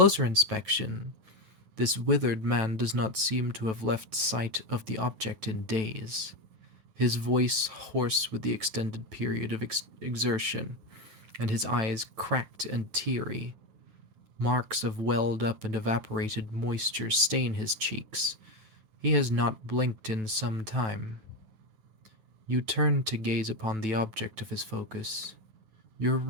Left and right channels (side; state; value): left; late; 9.1 ms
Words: inspection, this withered man does not seem to have left sight of the object in days, his voice hoarse with the extended period of exertion, and his eyes cracked and teary. Marks of welled up and evaporated moisture stain his cheeks. He has not blinked in some time. You turn to gaze upon the object of his focus, your